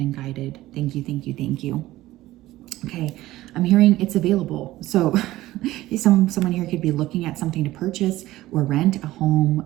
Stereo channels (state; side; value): quieter; left; 16.4 dB